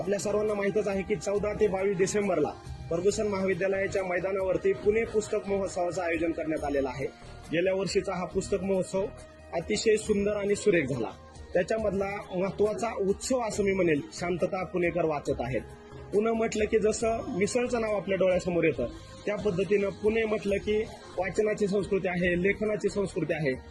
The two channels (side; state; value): both; identical; correlation 1.00